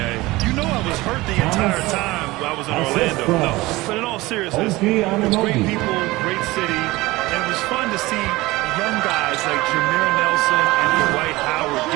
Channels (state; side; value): quieter; left; 20.1 dB